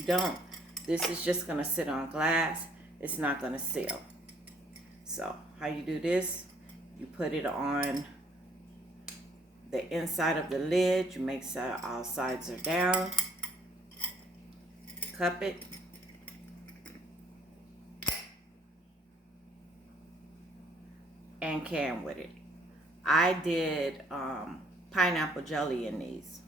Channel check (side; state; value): both; normal; correlation 0.63